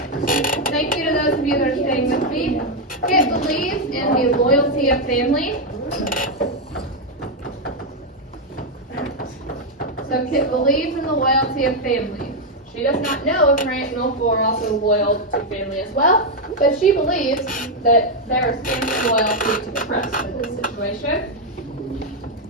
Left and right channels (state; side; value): normal; both; correlation 0.01